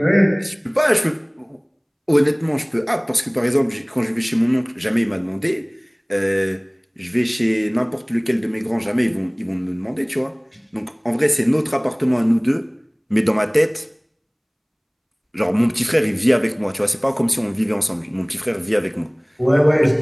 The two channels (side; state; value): both; identical; correlation 1.00